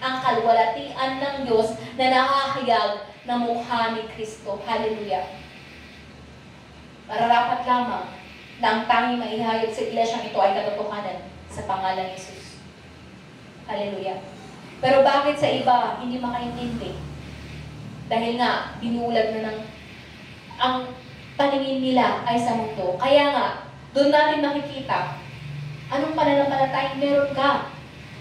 ang kalwalhatian ng Diyos na nakahayag na mukha ni Kristo. Hallelujah. Mararapat lamang na ang tanging maihayag sa iglesia ito ay katotohanan sa pangalan ni Jesus. Hallelujah. Pero bakit sa iba hindi makaintindi? Dahil nga, binulag na ng ang paningin nila ay sa mundo. Kaya nga, doon natin makikita anong pananampalatayang meron ka.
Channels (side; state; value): both; identical; correlation 1.00